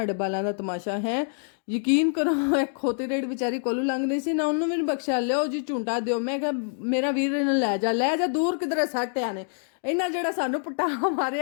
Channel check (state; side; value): silent; right; digital silence